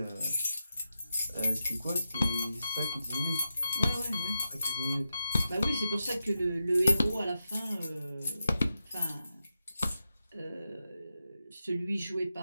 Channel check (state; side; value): inverted; both; correlation -0.89